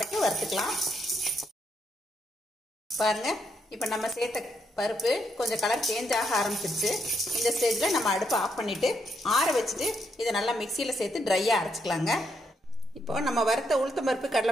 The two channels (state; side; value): normal; both; correlation 0.78